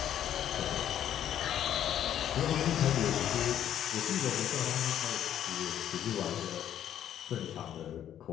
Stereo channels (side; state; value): right; quieter; 10.5 dB